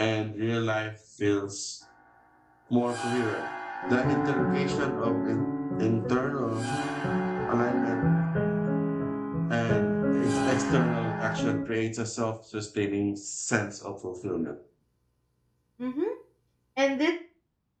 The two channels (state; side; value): identical; both; correlation 1.00